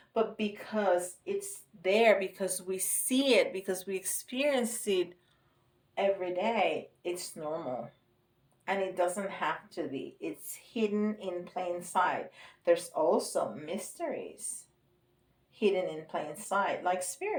but because it's there, because we see it, because we experience it every day, it's normal. And it doesn't have to be. It's hidden in plain sight. There's also mysteries hidden in plain sight, like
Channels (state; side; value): identical; both; correlation 1.00